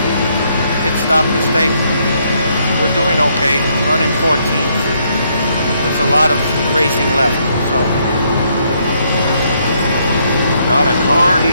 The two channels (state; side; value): inverted; both; correlation -0.72